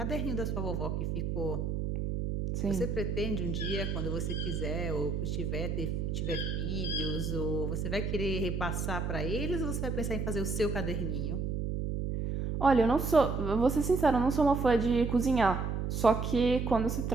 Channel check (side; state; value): right; noise; hum, 1 dB below the sound